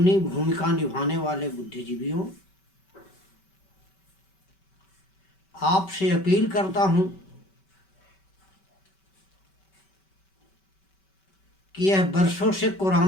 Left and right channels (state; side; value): late; right; 5.2 ms